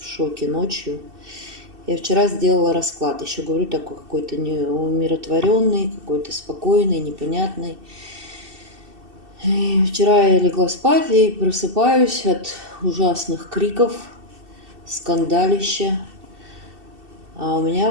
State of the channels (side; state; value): left; late; 2.7 ms